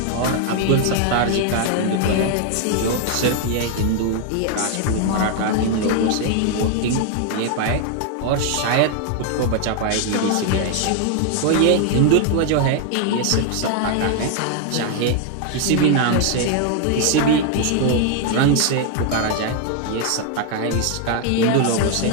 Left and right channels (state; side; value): different; both; correlation 0.00